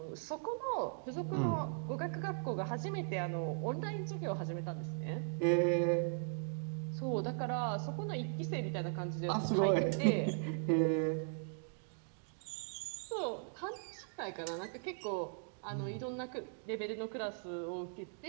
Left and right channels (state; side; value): silent; left; digital silence